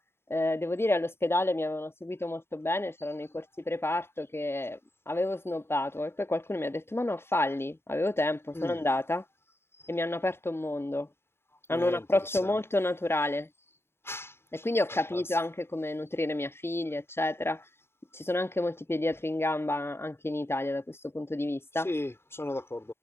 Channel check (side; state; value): right; late; 0.12 ms